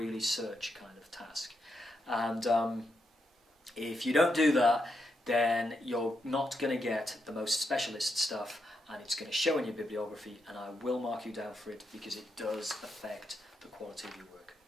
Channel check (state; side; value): normal; both; correlation 0.82